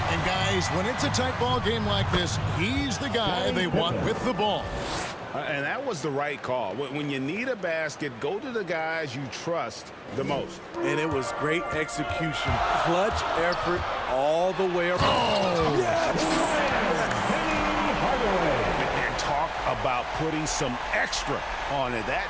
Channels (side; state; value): both; identical; correlation 1.00